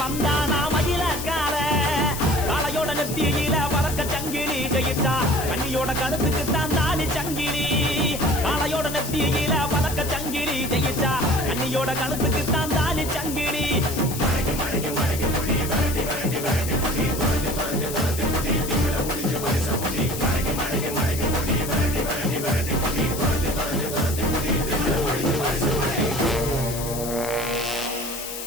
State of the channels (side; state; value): left; noise; hiss, 8 dB below the sound